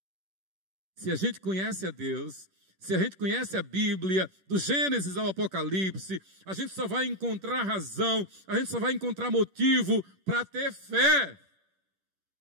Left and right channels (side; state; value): left; late; 10 ms